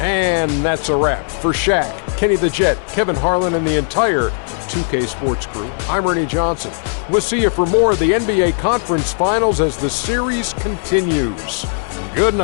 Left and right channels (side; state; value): right; silent; 68 dB below the other